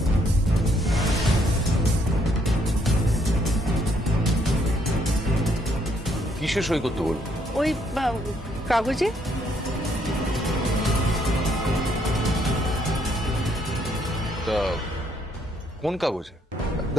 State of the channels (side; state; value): both; normal; correlation 0.71